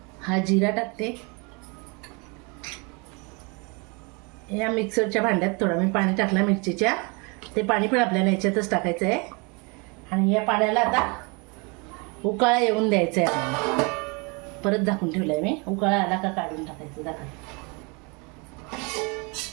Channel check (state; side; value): quieter; left; 30.5 dB